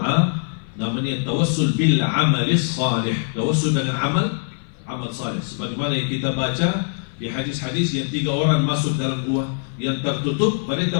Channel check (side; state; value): right; silent; 58 dB below the other